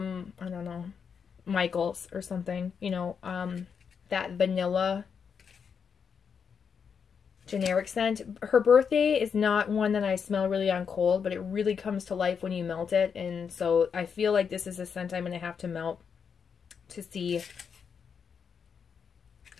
I don't know, Michael's or something, you know, that vanilla generic scent. Her birthday is not one that I smell really on cold, but it really comes to life when you melt it. And so I feel like this is a scent I'm going to have to melt to see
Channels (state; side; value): quieter; right; 6.6 dB